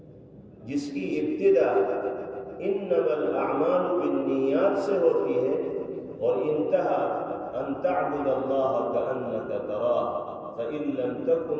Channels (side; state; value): both; identical; correlation 1.00